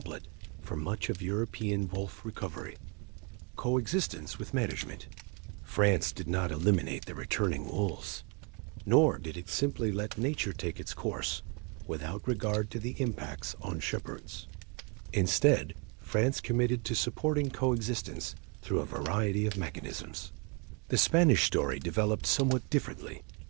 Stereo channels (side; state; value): left; quieter; 33.4 dB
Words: for much of European wolf recovery. Coexistence with management. France did not eliminate the returning wolves, nor did it simply let nature take its course without regard to the impacts on shepherds. Instead, France committed to supporting coexistence through a variety of mechanisms. The Spanish story developed somewhat differently,